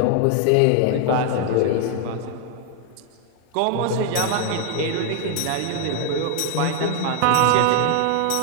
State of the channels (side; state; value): both; different; correlation 0.00